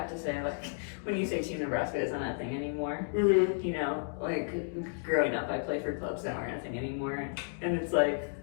to say, like, when you say Team Nebraska isn't a thing anymore, Mm-hmm. you know, like, growing up, I played for clubs that aren't a thing anymore, and it's like,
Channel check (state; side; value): silent; right; 56 dB below the other